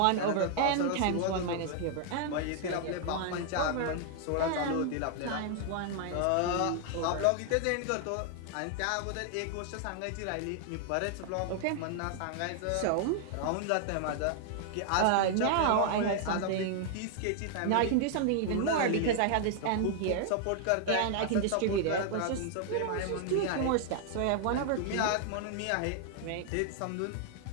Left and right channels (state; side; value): different; both; correlation 0.00